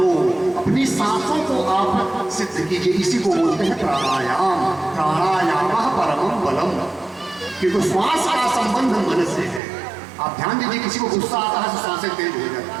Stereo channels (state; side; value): drops out; left; at 9.6 s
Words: अपनी सांसों को आप सिद्ध कीजिए। इसी को बोलते हैं प्राणायाम। प्राणायाम परमं बलम, क्योंकि श्वास का संबंध मन से है। आप ध्यान दीजिए, किसी को गुस्सा आता है तो सांसें तेज हो